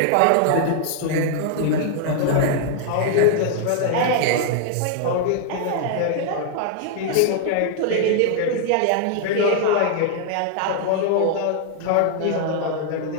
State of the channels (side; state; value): both; different; correlation 0.00